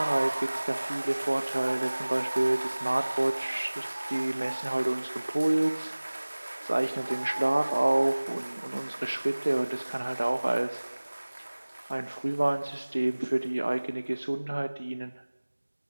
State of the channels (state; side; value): inverted; both; correlation -1.00